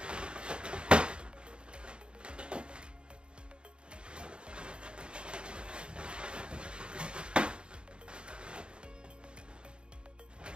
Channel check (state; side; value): late; left; 0.053 ms